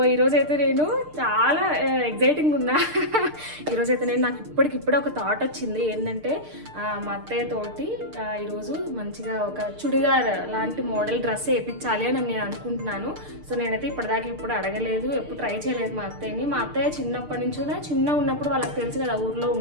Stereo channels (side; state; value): left; late; 6.6 ms